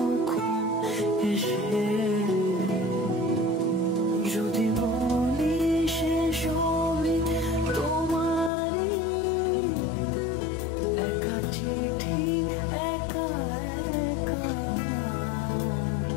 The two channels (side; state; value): right; drops out; at 8.5 s